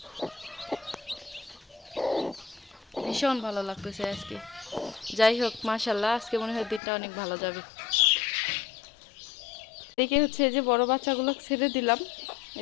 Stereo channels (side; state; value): right; drops out; at 6.8 s